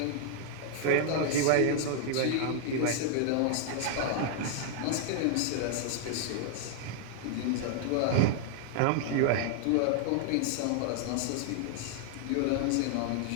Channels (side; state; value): both; different; correlation 0.00